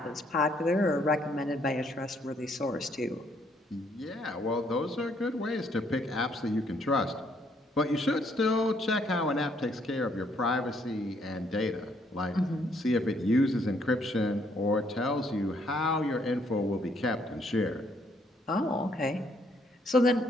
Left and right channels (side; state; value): both; normal; correlation 0.69